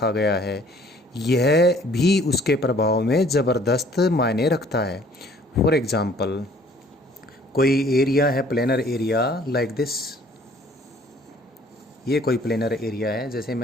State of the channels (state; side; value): normal; both; correlation 0.56